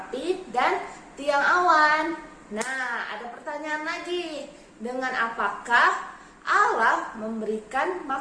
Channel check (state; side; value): identical; both; correlation 1.00